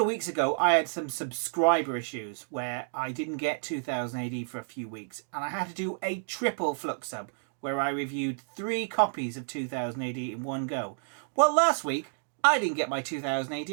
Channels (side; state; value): left; silent; digital silence